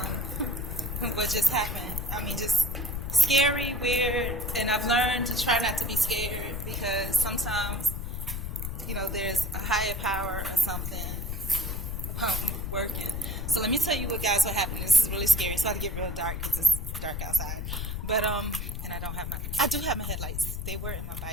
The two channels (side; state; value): left; noise; rumble, 4 dB below the sound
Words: what just happened. I mean, just scary, weird, and I've learned to try not to be scared because sometimes, there's a higher power or something working. So let me tell you what happened. This is really scary. It's about to get real dark because it's dark outside. But and I do have my headlights. They were in my